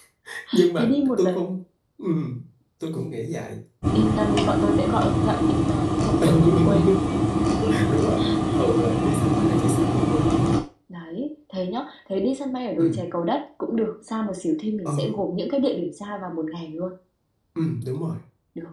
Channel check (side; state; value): both; identical; correlation 1.00